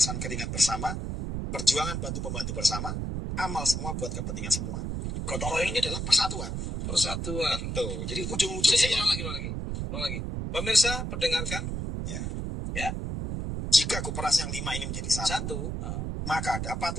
keringat bersama, perjuangan bantu membantu bersama, amal semua buat kepentingan semua. Gotong royong ini adalah persatuan. Betul. Jadi ujung-ujungnya ulang lagi. Pemirsa, pendengarkan. Ya. Jika aku peras yang 5 ini menjadi 1, maka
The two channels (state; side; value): noise; right; rumble, 3 dB below the sound